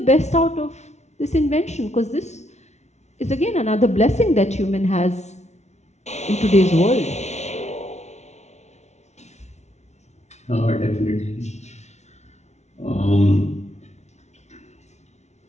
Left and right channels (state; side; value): late; right; 0.32 ms